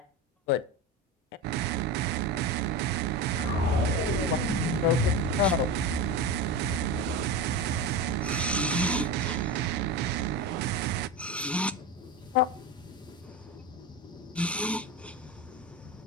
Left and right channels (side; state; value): both; normal; correlation 0.22